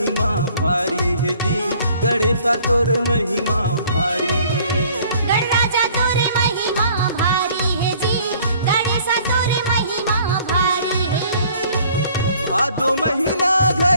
भारी है जी, गणेशा तोर महिमा भारी है। गणराजा तोर महिमा भारी है जी, गणेशा तोर महिमा भारी है। भादो महीना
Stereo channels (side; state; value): both; inverted; correlation -0.56